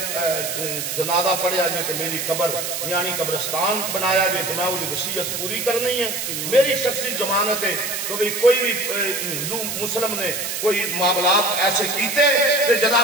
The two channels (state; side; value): noise; right; hiss, 4 dB below the sound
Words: جنازہ پڑھیا جائے تو میری قبر یعنی قبرستان بنایا جائے تو میں وہ وصیت پوری کرنی ہے میری شخصی ضمانت ہے تو بھی کوئی بھی ہندو مسلم نے کوئی معاملات ایسے کیتے کہ